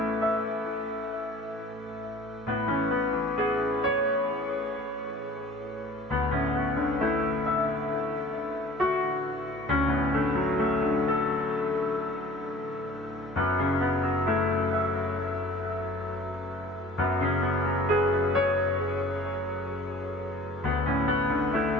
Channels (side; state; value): both; normal; correlation 0.48